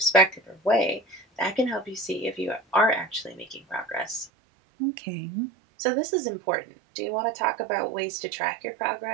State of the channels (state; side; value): drops out; left; at 4.3 s